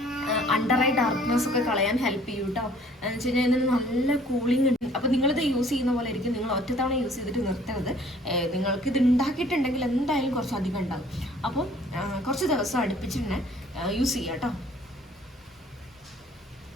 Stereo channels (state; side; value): normal; both; correlation 0.56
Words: under eye darkness ഒക്കെ കളയാൻ ഹെൽപ്പ് ചെയ്യും കേട്ടോ. എന്ന് വെച്ച് കഴിഞ്ഞാൽ ഇതിന് നല്ല കൂളിംഗ് ഉണ്ട്. അപ്പോൾ നിങ്ങളിത് യൂസ് ചെയ്യുന്ന പോലെ ആയിരിക്കും. നിങ്ങൾ ഒറ്റത്തവണ യൂസ് ചെയ്തിട്ട് നിർത്തരുത്. നിങ്ങൾക്ക് ഇത് ഉണ്ടാക്കിയിട്ടുണ്ടെങ്കിൽ എന്തായാലും കുറച്ചധികം ഉണ്ടാകും. അപ്പം കുറച്ച് ദിവസം അടുപ്പിച്ച് തന്നെ യൂസ് ചെയ്യാം കേട്ടോ.